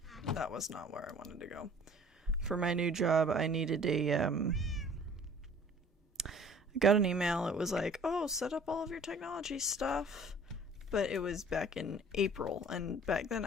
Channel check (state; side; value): normal; both; correlation 0.50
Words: was not where I wanted to go. For my new job, I needed I got an email. It was like, oh, set up all of your technology stuff. But it was back in April, and back then